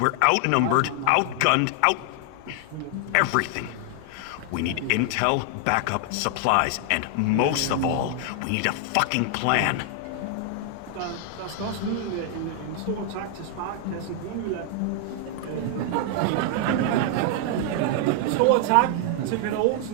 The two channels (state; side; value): different; both; correlation 0.00